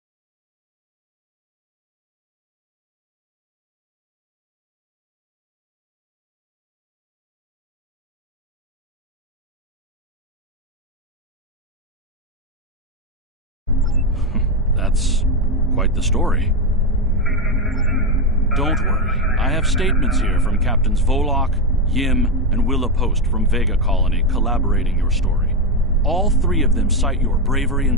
That's quite the story. Don't worry. I have statements here from Captains Volok, Yim, and Willa Post from Vega Colony collaborating your story. All three of them cite your bravery and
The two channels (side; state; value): both; normal; correlation 0.09